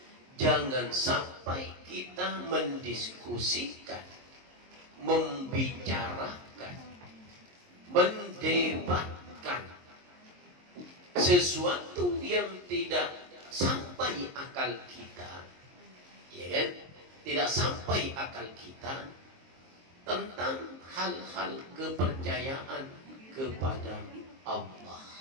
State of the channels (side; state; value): left; late; 23 ms